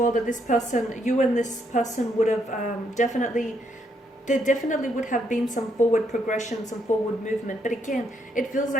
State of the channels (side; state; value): both; normal; correlation 0.74